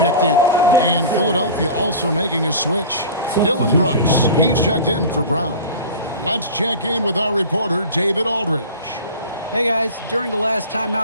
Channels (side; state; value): both; inverted; correlation -0.35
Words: in. And Philadelphia also making a switch. Dylan Brooks, he's checked in for Brown. Let's check in with our reporter, David Aldridge. Hey guys, during the last